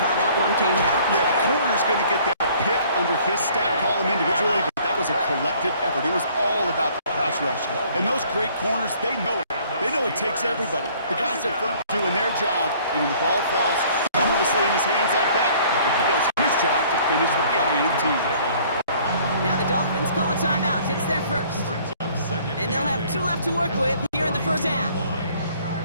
that one came out. Yeah, the corner's going to get that pick under his stat column individually, but that was a collective effort. It was all about the pass rush. And those great corners, they know it. They know it takes everybody. The guys up front doing their job, and when the ball falls harmlessly in his hands like that, he does his job to finish with the INT. Now the Dolphins call a timeout. It's their first. And they'll have 2 left to work with here in the 1st half.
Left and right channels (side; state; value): both; inverted; correlation -0.56